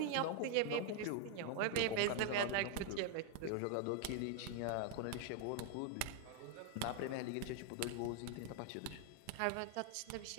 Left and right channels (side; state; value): both; different; correlation 0.00